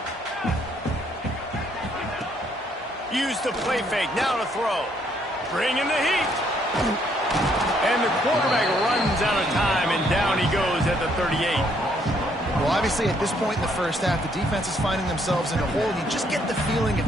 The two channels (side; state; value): both; normal; correlation 0.69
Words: Use the play fake, now to throw. Bring in the heat. And the quarterback runs out of time and down he goes at the 38. Well, obviously, at this point in the first half, the defense is finding themselves in a hole. You just get the feeling if